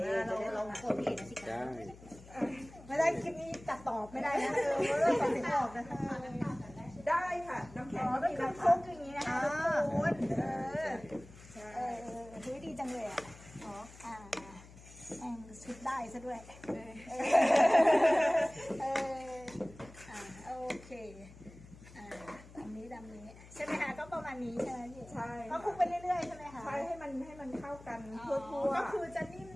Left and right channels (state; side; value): noise; left; hum, 19 dB below the sound